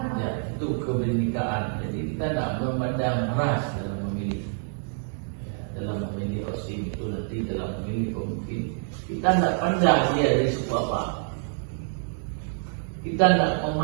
Ya, itu kebinekaan. Jadi kita tidak memandang ras dalam memilih. Ya, dalam memilih osim itu nanti dalam memilih pemimpin. Kita tidak pandang dia dari suku apa. Kita tidak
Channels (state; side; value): silent; left; 60 dB below the other